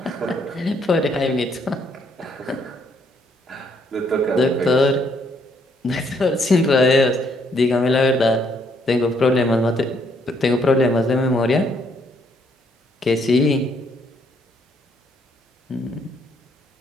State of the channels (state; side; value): normal; both; correlation 0.70